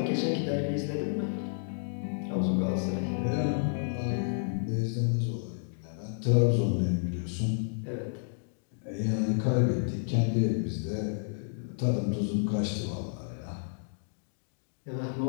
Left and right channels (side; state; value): right; silent; digital silence